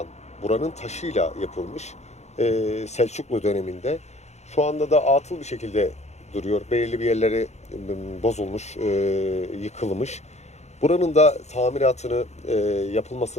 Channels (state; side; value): late; right; 0.32 ms